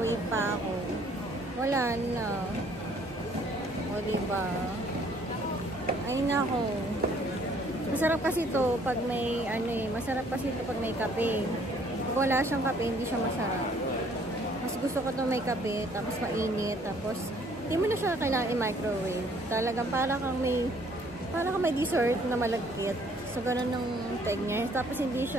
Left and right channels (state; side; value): normal; both; correlation 0.61